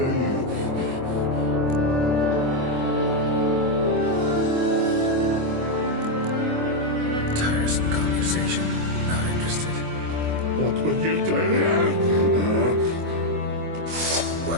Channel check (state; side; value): late; left; 24 ms